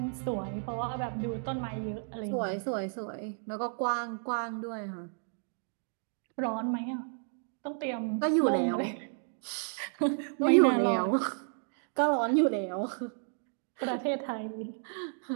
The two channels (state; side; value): silent; left; 56 dB below the other